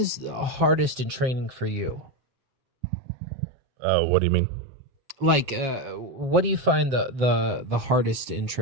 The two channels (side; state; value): left; late; 7.6 ms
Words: hardest in training for you? What do you mean? Like, what do you find the hardest in